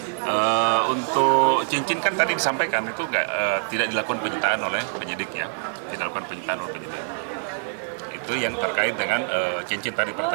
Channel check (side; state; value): left; silent; digital silence